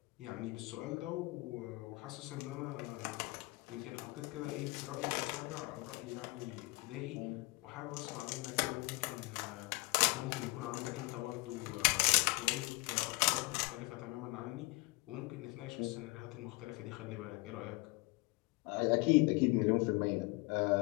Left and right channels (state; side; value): quieter; right; 24.0 dB